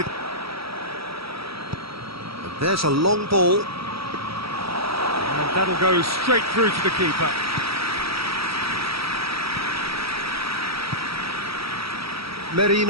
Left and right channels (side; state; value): left; late; 0.76 ms